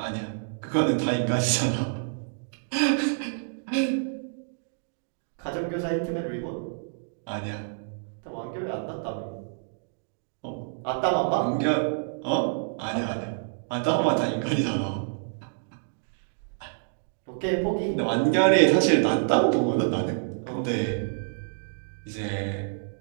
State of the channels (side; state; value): left; silent; digital silence